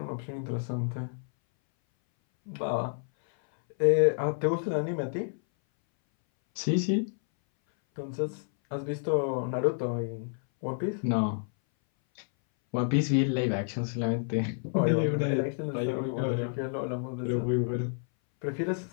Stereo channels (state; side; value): silent; right; 58 dB below the other